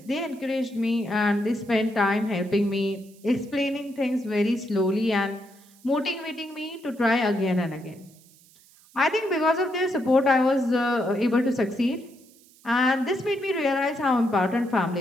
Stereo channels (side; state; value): right; noise; hiss, 27 dB below the sound